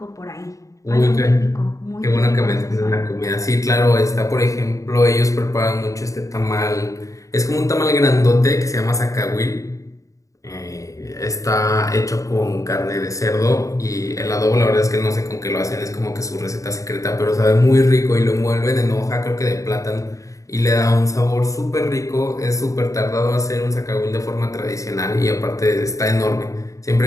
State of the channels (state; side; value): late; right; 0.16 ms